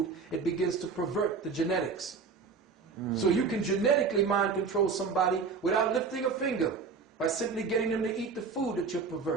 it begins to pervert the genetics. So you can genetically mind control somebody without lifting a finger, by simply getting them to eat the food that you're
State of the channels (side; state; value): left; quieter; 5.1 dB